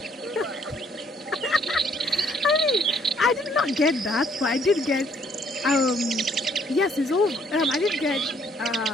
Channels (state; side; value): normal; both; correlation 0.65